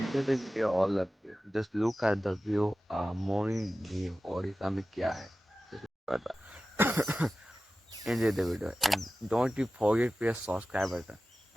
the video all of you. Just look at the view. Morning view और इस में क्या है. Just look at that. Enjoy the video and don't you forget to press subscribe button.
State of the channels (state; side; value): normal; both; correlation 0.95